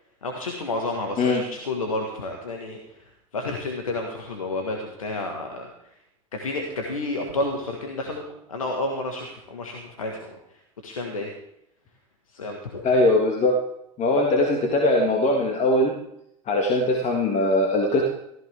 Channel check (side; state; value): both; normal; correlation 0.11